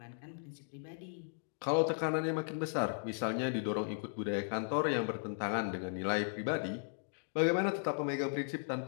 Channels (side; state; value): right; silent; digital silence